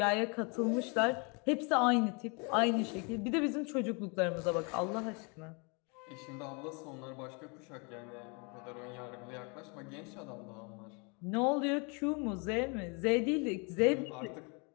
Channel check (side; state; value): right; quieter; 32.9 dB